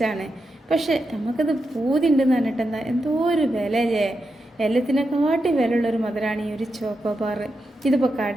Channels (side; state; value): both; normal; correlation 0.87